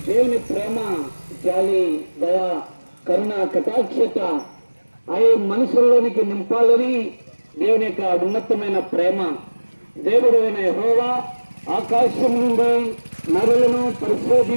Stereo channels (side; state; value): both; inverted; correlation -1.00